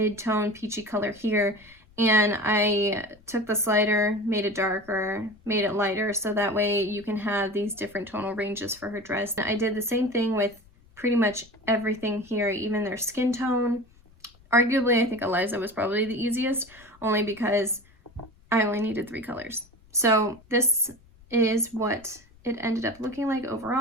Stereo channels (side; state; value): left; noise; rumble, 28 dB below the sound